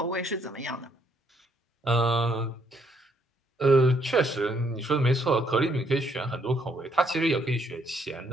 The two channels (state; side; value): normal; both; correlation 0.70